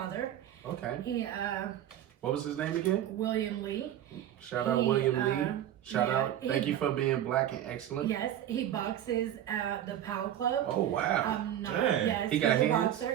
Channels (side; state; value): left; quieter; 11.4 dB